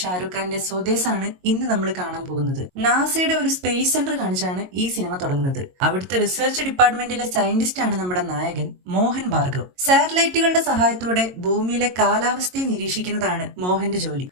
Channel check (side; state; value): left; late; 22 ms